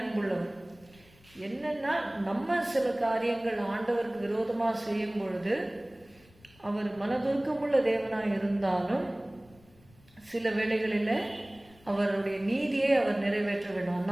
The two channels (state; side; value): noise; left; rumble, 28 dB below the sound